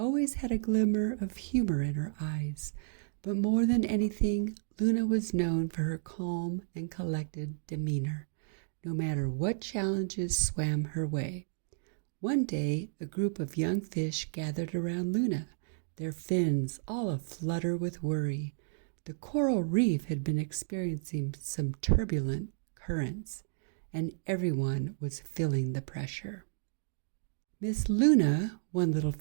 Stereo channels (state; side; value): silent; left; digital silence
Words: had a glimmer of humor in her eyes. But more than anything, Luna was known for her calm and collected demeanor, no matter what challenges swam her way. One day, a group of young fish gathered around Luna, their fins all aflutter with worry. The coral reef had been experiencing some turbulent currents, and everyone was feeling the pressure. "Miss Luna," one little